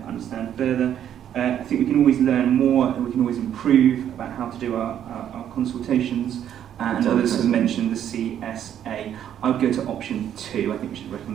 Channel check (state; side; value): quieter; left; 10.1 dB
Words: understand further. I think we can always learn more and we can always improve about how to do our consultations. And others have mentioned the CSA. I would go to option 2. I think we should